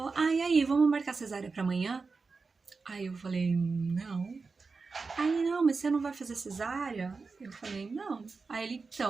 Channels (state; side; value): quieter; left; 4.4 dB